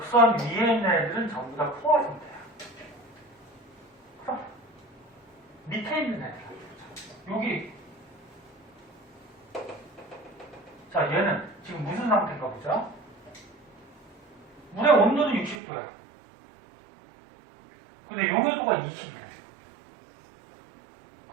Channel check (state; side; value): drops out; left; at 15.6 s